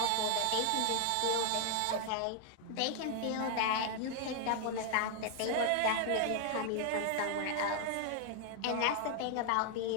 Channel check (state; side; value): different; both; correlation 0.00